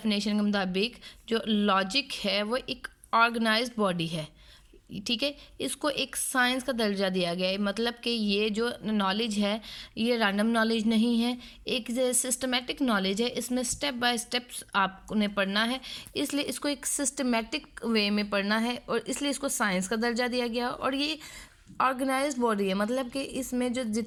के मुताबिक जो लॉजिक है वो एक ऑर्गेनाइज्ड बॉडी है, ठीक है। इसको एक साइंस का दर्जा दिया गया है, मतलब कि ये जो नॉलेज है ये रैंडम नॉलेज नहीं है, एक सिस्टमेटिक नॉलेज है। इसमें स्टेप बाय स्टेप्स आपने पढ़ना है, इसलिए इसको एक सिस्टमेटिक वे में पढ़ना है और इसलिए इसको साइंस का दर्जा दिया गया। और ये ऑर्गेनाइज्ड बॉडी है, मतलब कि इसमें जो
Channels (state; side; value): identical; both; correlation 1.00